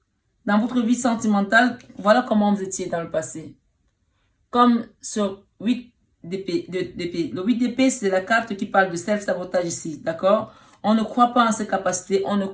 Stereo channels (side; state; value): both; identical; correlation 1.00